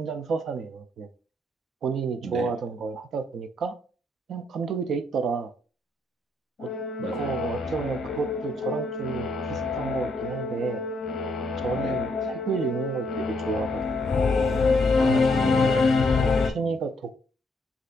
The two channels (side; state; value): both; normal; correlation 0.72